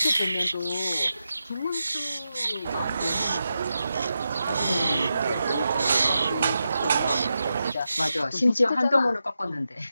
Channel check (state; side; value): inverted; both; correlation -0.88